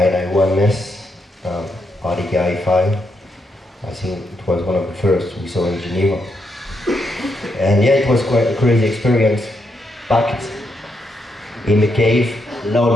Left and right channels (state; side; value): normal; both; correlation 0.80